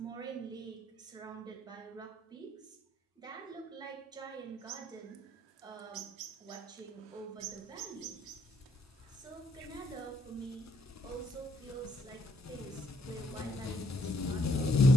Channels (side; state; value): both; normal; correlation 0.70